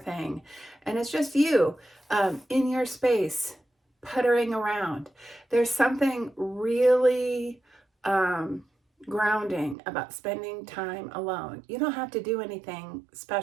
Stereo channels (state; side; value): drops out; left; at 9.8 s